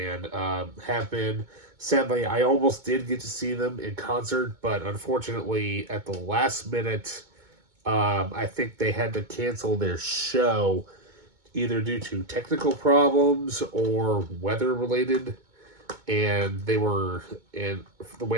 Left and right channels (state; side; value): late; left; 2.2 ms